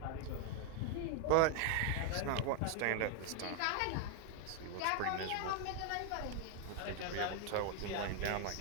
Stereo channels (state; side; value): different; both; correlation 0.00